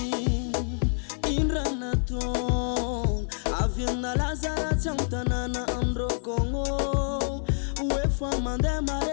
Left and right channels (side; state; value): right; silent; digital silence